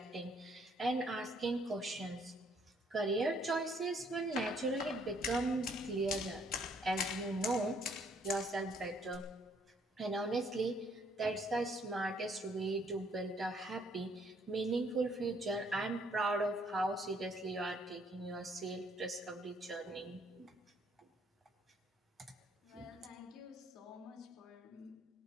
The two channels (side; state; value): both; normal; correlation 0.66